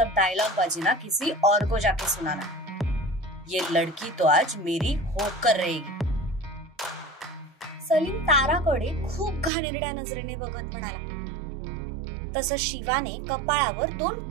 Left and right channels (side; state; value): left; drops out; at 9.5 s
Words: डायलॉग बाजी ना किसी और को जाके सुनाना. ये लड़की तो आज मेरी होकर रहेगी. सलीम ताराकडे खूप घाणेरड्या नजरेने बघत म्हणाला. तसं शिवाने कपाळावर 2